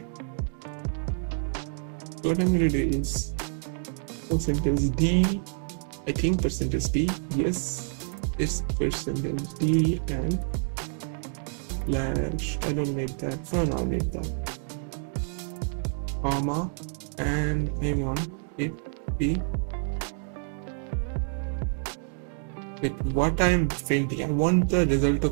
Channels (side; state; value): left; silent; 57 dB below the other